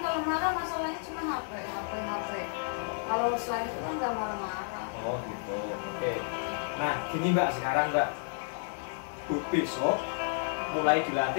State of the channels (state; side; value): silent; right; digital silence